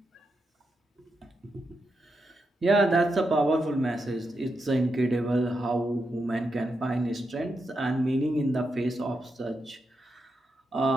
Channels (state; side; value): normal; both; correlation 0.85